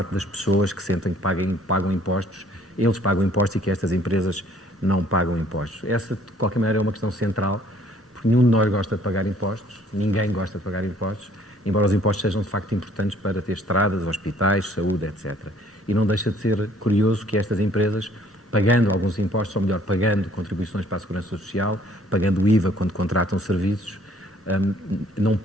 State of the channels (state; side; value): normal; both; correlation 0.59